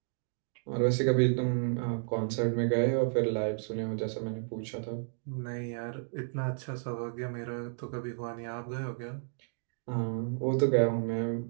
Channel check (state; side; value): silent; left; digital silence